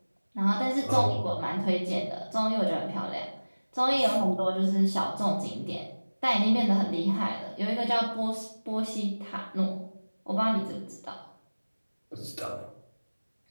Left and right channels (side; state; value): both; inverted; correlation -1.00